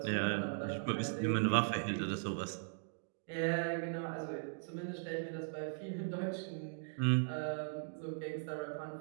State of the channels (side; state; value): left; silent; digital silence